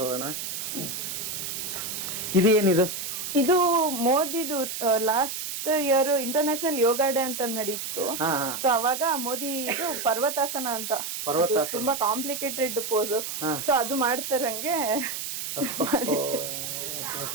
ಹೋಗೋಣ. ಇದು ಏನಿದು? ಇದು ಮೋದಿದು ಲಾಸ್ಟ್ ಇಯರ್ ಇಂಟರ್ನ್ಯಾಷನಲ್ ಯೋಗ ಡೇ ಅಂತ ನಡೀತು. ಸೊ ಅವಾಗ ಮೋದಿ ಇದು ಪರ್ವತಾಸನ ಅಂತ, ತುಂಬಾ ಕಾಂಪ್ಲಿಕೇಟೆಡ್ ಪೋಸ್. ಸೊ ಅದು ಮಾಡ್ತಾರಂಗೆ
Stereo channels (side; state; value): right; noise; hiss, 5 dB below the sound